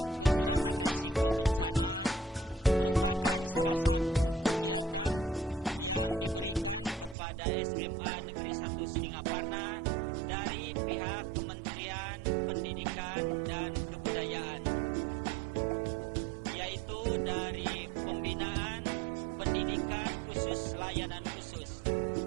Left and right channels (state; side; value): drops out; left; at 7.2 s